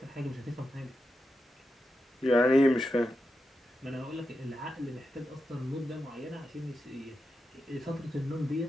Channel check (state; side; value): normal; both; correlation 0.88